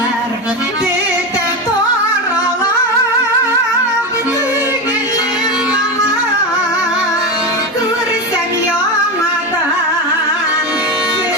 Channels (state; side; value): normal; both; correlation 0.18